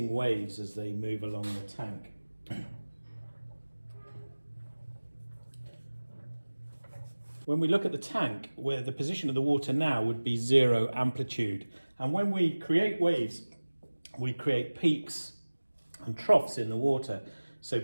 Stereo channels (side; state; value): both; inverted; correlation -1.00